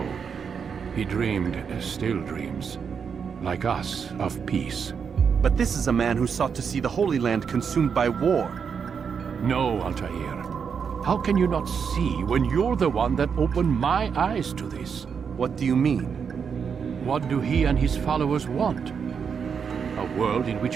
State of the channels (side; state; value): left; quieter; 6.5 dB